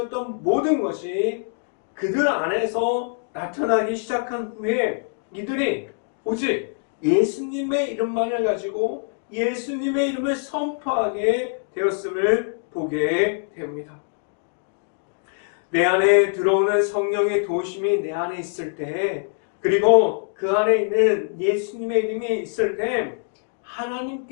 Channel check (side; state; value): right; silent; 60 dB below the other